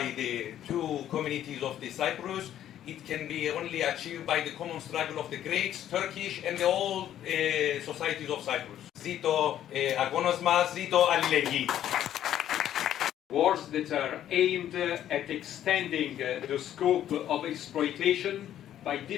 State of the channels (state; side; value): quieter; right; 11.3 dB